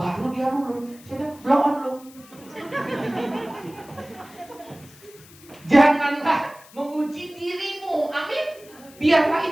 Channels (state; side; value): noise; left; hiss, 23 dB below the sound